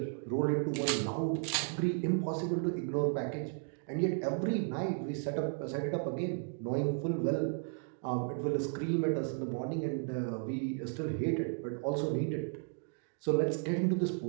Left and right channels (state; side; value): silent; left; 55 dB below the other